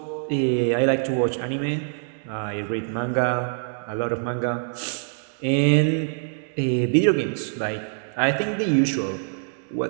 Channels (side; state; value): left; silent; digital silence